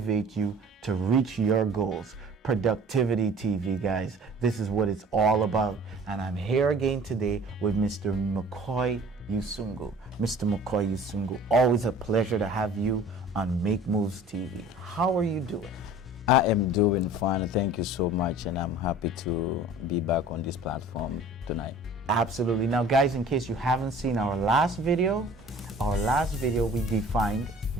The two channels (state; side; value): normal; both; correlation 0.47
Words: you to reach your goals. Productivity TV, guys. This is what it's all about. And I'm here again today with Mr. McCoy Yusungu. Mr. McCoy Yusungu, always a pleasure to have you on Make Moves TV. How are you doing? I am doing fine. Thank you so much, and I'm happy to be back on this platform tonight. Absolutely. Now, guys, in case you haven't seen our last video we defined